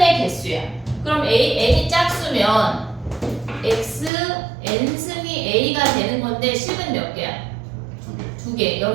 개수야. 그럼 n이 짝수면 x n승이 a가 되는 건데 실근 몇 개야? 두 개.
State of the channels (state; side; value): drops out; left; at 4.1 s